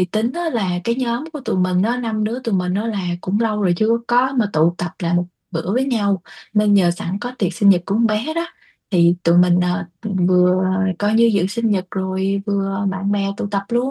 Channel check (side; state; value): both; identical; correlation 1.00